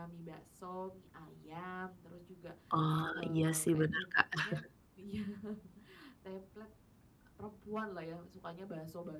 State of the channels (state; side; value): identical; both; correlation 1.00